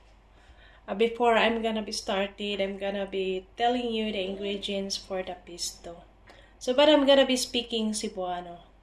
before I'm gonna be started, I'm gonna be telling you the ingredients for the pesto. So, but I'm gonna be speaking Cebuano.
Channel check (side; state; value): both; identical; correlation 1.00